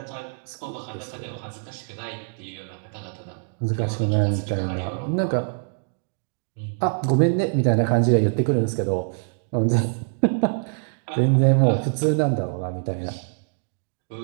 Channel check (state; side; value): silent; left; digital silence